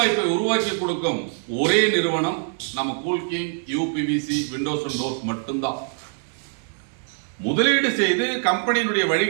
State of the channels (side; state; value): left; silent; 63 dB below the other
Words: உருவாக்கி கொடுக்கும் ஒரே நிறுவனம் நம்ம Coolking, UPVC, Windows and doors மட்டும்தான். முதலீடு செய்து கம்பெனியினுடைய